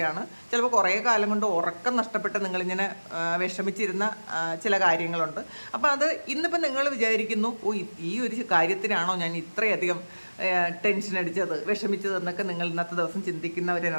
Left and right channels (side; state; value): both; inverted; correlation -1.00